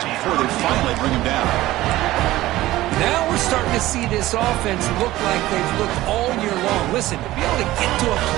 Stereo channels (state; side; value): quieter; left; 16.5 dB